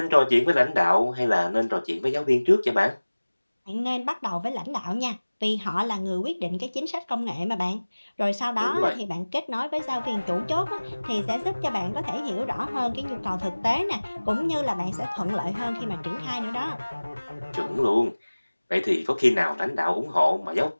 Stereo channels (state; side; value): inverted; both; correlation -1.00